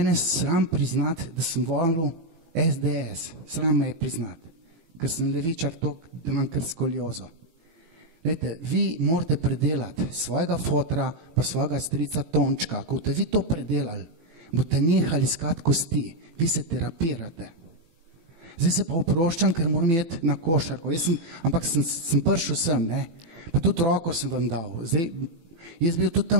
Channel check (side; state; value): left; late; 18 ms